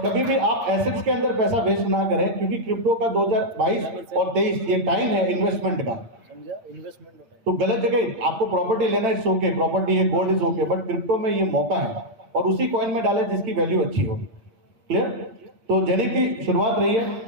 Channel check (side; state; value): left; late; 8.9 ms